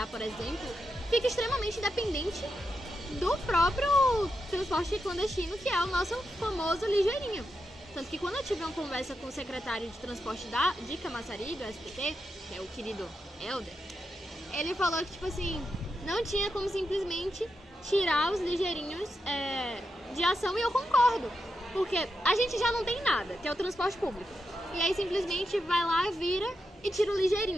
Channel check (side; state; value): both; normal; correlation 0.86